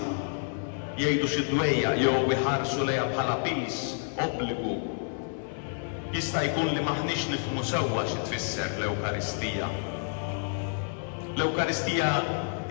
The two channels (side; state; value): right; silent; 57 dB below the other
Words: jgħidu xi dwejja jew iħarsu lejha bħala pis, obbligu. Jista' jkun li maħniex nifhmu sewwa xi tfisser l-Ewkaristija. L-Ewkaristija